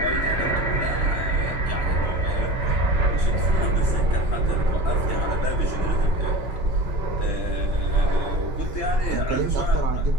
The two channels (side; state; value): left; late; 3.0 ms